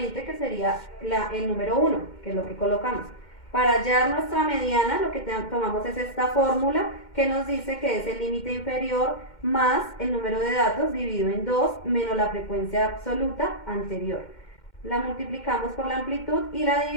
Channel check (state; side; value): late; right; 2.1 ms